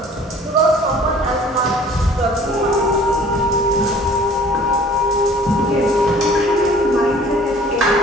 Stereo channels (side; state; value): both; normal; correlation 0.51